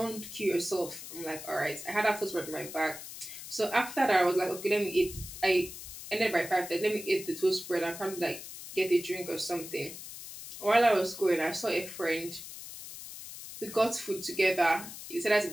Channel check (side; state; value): left; noise; hiss, 12 dB below the sound